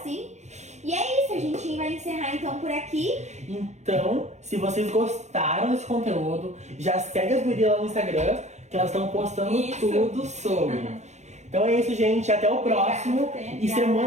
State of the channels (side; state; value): left; late; 0.33 ms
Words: E é isso, a gente vai encerrar então por aqui. Então, se vocês gostaram desse conteúdo, já segue as gurias lá no Instagram, que elas estão postando Isso. tudo sobre. Então é isso, gente. Até o próximo. Obrigada. E